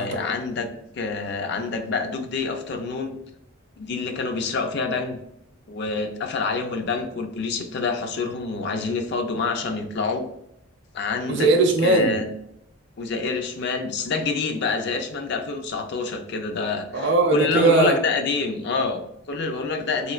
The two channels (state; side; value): normal; both; correlation 0.16